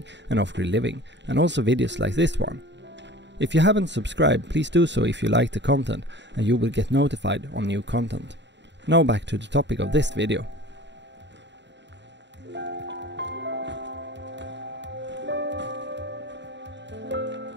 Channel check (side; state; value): left; late; 0.52 ms